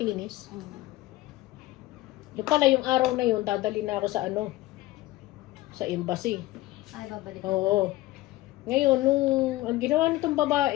Yung pala, yung araw na yun, dadali na ako sa sa embassy. Ay, babalik. Oo. Ngayon, nung ang ginawa nitong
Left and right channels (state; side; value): quieter; right; 17.8 dB